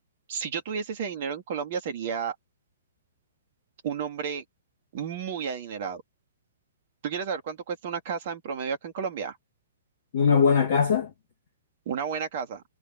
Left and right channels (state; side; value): inverted; both; correlation -0.55